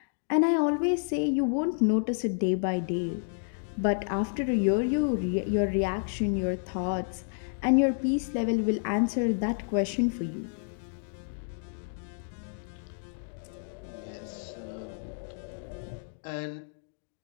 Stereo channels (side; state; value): right; silent; digital silence